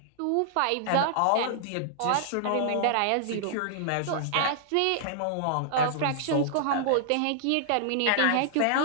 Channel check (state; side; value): different; both; correlation -0.01